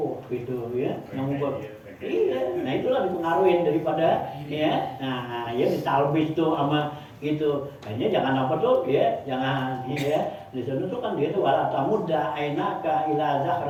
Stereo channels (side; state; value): both; identical; correlation 1.00